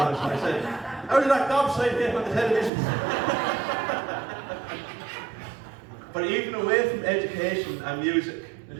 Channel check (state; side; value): drops out; left; at 2.7 s